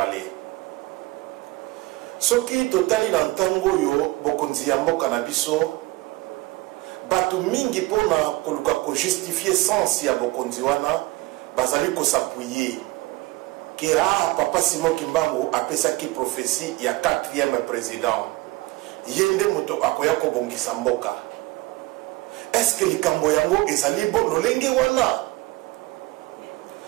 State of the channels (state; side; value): quieter; left; 21.1 dB